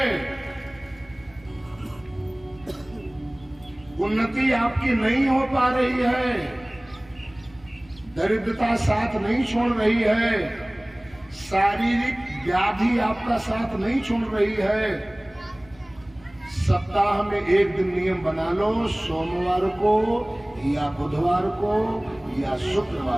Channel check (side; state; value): right; noise; rumble, 26 dB below the sound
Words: उन्नति आपकी नहीं हो पा रही है, दरिद्रता साथ नहीं छोड़ रही है, शारीरिक व्याधि आपका साथ नहीं छोड़ रही है। सप्ताह में एक दिन नियम बना लो, सोमवार को या बुधवार को या